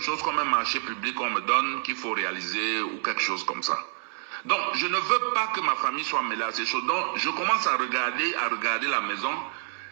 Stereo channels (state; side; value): silent; left; digital silence